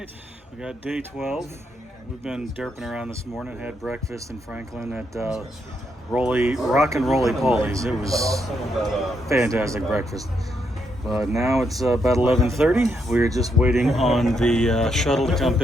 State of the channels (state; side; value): normal; both; correlation 0.78